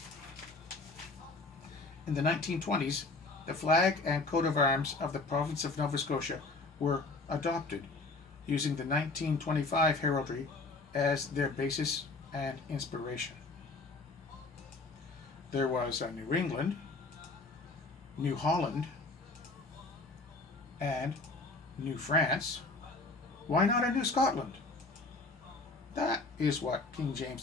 In the 1920s, the flag and coat of arms of the province of Nova Scotia were adopted, using the 1925 heraldry as their basis and inspiration. There was a New England, New Holland, and New France. Why not a New Scotland? That is what King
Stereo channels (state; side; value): quieter; right; 3.5 dB